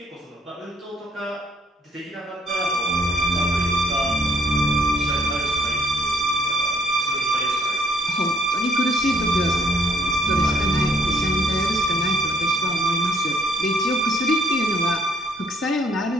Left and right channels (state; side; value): normal; both; correlation 0.65